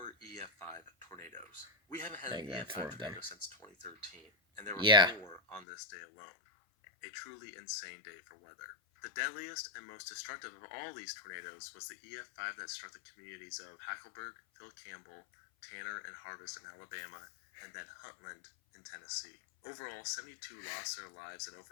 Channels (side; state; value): right; drops out; at 5.7 s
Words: EF5 tornadoes. We haven't had I an got four EF5 of them. tornado since 2013, and there were Yeah. 4 on this day alone. A truly insane day for weather. The deadliest and most destructive of all these tornadoes was the EF5 that struck the communities of Hackleburg, Phil Campbell, Tanner, and Harvest in Alabama, and then Huntland in Tennessee. Overall, 72 lost their lives and